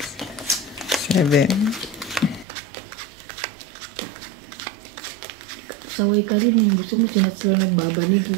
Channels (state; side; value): drops out; left; at 2.5 s